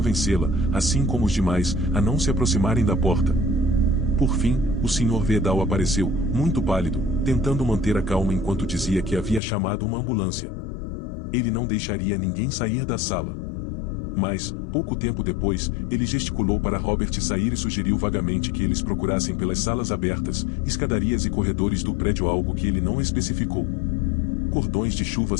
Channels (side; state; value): right; drops out; at 9.4 s